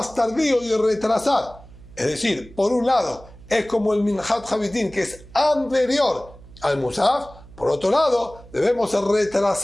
tardío y retrasar. Es decir, por un lado, es como el Minhat Habitim, que es anterior al Musaf. Por otro lado, debemos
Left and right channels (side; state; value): right; noise; hum, 21 dB below the sound